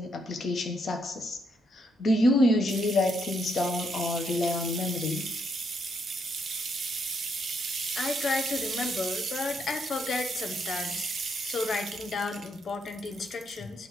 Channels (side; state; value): both; normal; correlation 0.76